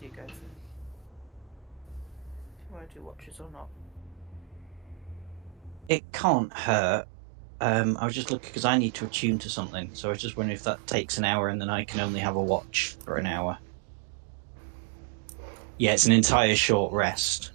you guys. If you want to do watches or not. It can't hurt. I was just looking because I need to attune to something, so I was just wondering if that takes an hour and then I can only have a watch for an hour. Yeah, it's an entire short rest,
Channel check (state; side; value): drops out; left; at 5.9 s